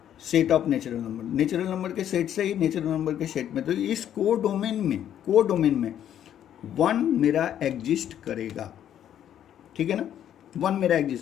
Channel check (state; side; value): quieter; right; 10.3 dB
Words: set of natural number के सेट से ही नेचुरल नंबर के सेट में। तो इस कोडोमेन में 1 मेरा एग्जिस्ट करेगा। ठीक है ना, 1 मेरा